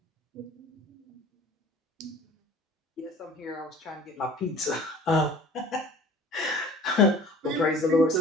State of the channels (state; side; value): normal; both; correlation 0.46